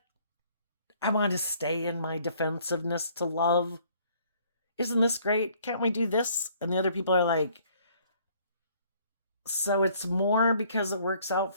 I want to stay in my defensiveness to love. Isn't this great? Can't we do this? And the other people are like, so it's more because it works out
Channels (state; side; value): inverted; both; correlation -0.61